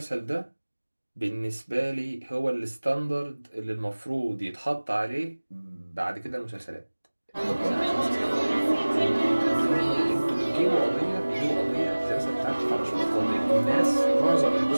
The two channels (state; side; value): inverted; both; correlation -1.00